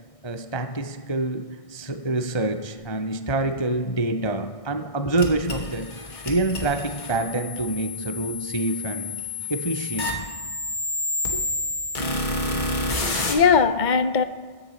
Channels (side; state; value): right; late; 1.6 ms